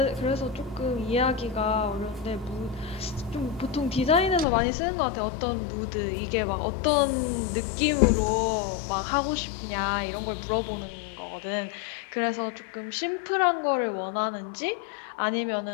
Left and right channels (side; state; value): right; drops out; at 4.5 s